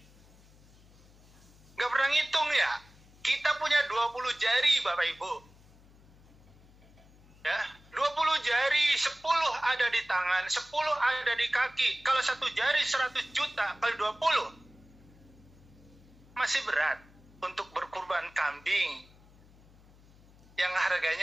Gak pernah ngitung ya? Kita punya 20 jari Bapak Ibu. Ya, 20 jari, 10 ada di tangan, 10 ada di kaki. Kalau 1 jari 100 juta kali 20, masih berat untuk berkurban kambing yang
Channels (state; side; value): noise; left; hum, 25 dB below the sound